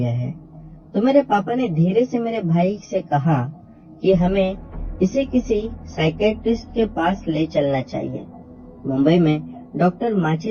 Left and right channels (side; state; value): both; identical; correlation 1.00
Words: है। तो मेरे पापा ने धीरे से मेरे भाई से कहा कि हमें इसे किसी साइकेट्रिस्ट के पास ले चलना चाहिए। मुंबई में डॉक्टर